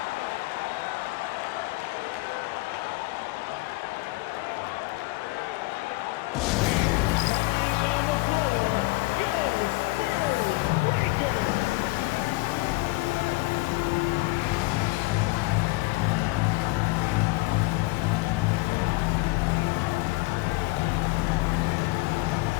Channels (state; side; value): quieter; right; 22.9 dB